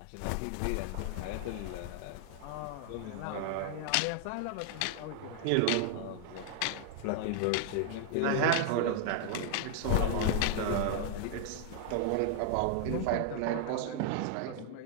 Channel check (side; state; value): both; different; correlation 0.00